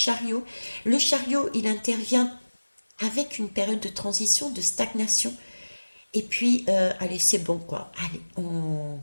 Le chariot, il intervient avec une période de transition, de stagnation. Et puis, allez, c'est bon quoi. Allez,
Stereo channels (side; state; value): both; inverted; correlation -1.00